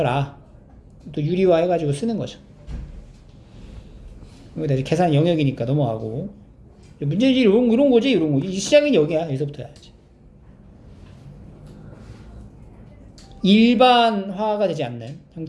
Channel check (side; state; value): both; identical; correlation 1.00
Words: 또 유리화 해가지고 쓰는 거죠. 여기다 이제 계산 영역이니까 넘어가고 문제지 이런 거지. 이 시작은 여기야. 여기서부터 해야지. 일반화가 되지 않는